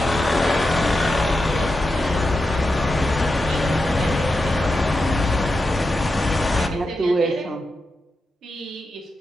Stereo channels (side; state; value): both; normal; correlation 0.89